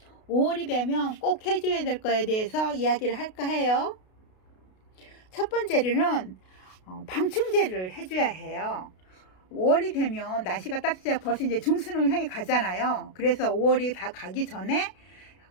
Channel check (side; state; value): right; late; 32 ms